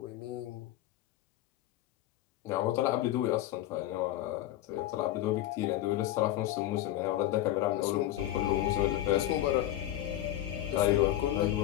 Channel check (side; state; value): right; quieter; 13.7 dB